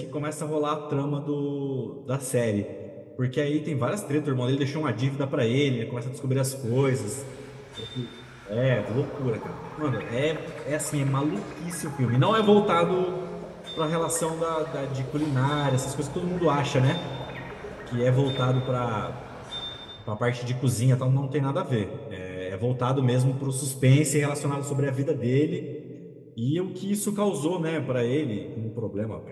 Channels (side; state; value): both; identical; correlation 1.00